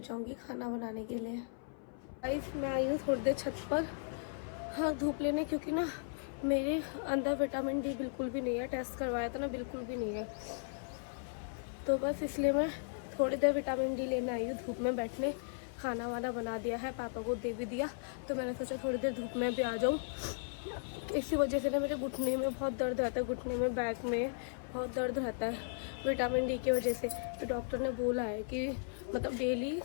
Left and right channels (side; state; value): right; silent; 54 dB below the other